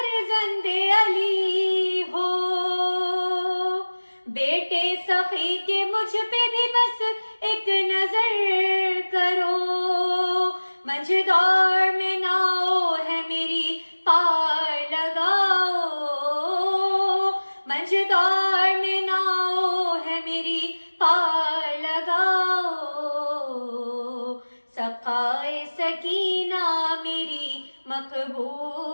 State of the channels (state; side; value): inverted; both; correlation -1.00